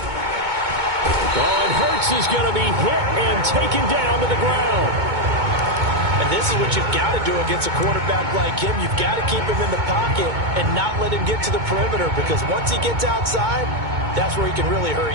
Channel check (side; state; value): left; late; 2.2 ms